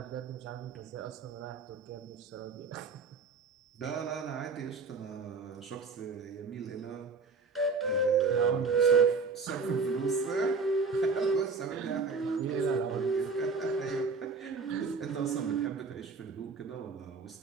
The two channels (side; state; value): left; quieter; 4.6 dB